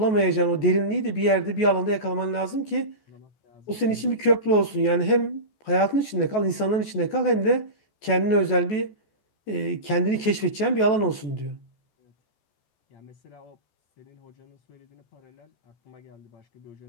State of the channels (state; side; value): late; right; 14 ms